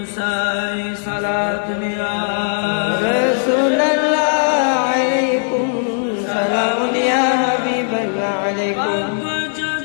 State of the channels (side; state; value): right; silent; digital silence